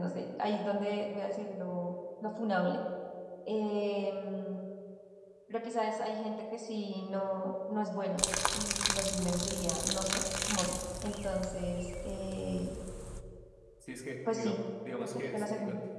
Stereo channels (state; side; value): identical; both; correlation 1.00